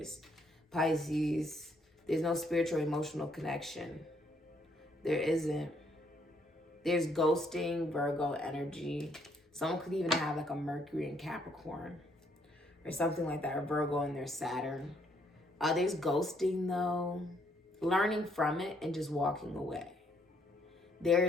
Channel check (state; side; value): normal; both; correlation 0.70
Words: Pisces. There's no spiritual or emotional connection. There isn't. There's ghosting, Virgo energy. Someone could even have like a Mercury and Capricorn or something like that, or Virgo and their Saturn. There's ghosting though, learning from it and just walking away.